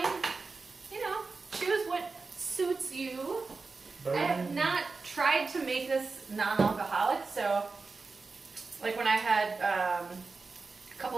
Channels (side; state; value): left; quieter; 4.1 dB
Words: choose what suits you. I have not tried to make this non-alcoholic, so like when I had a couple